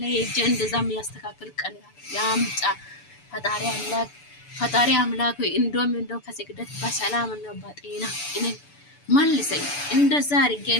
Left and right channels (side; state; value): right; late; 6.9 ms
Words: ላይ ሄጄ እንደዛ የሚያስተካክል ቀን ያምጣ። ፈጣሪ አምላክ ሆይ እንደው ከስግደት በሰላም ነው በጤና እኔ መልሰኝ። እንደዛ አድርጌ